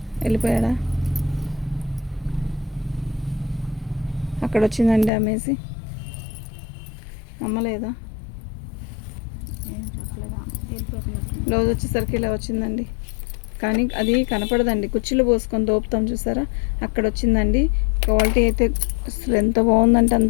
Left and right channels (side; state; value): right; drops out; at 5.1 s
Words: వెళ్ళిపోయాడా. అక్కడ వచ్చిందండి డ్యామేజ్. అమ్మలేదా. బ్లౌజ్ వచ్చేసరికి ఇలా వచ్చిందండి. కానీ అది కనపడదండి, కుర్చీలు పోసుకొని దోపుతాం చూసారా, అక్కడ వచ్చిందండి. క్వాలిటీ అయితే అసలు ఎంత బాగుందంటే